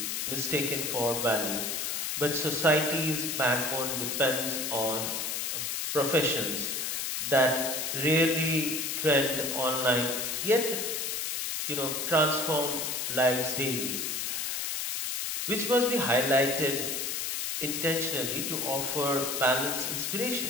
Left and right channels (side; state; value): left; noise; hiss, 2 dB below the sound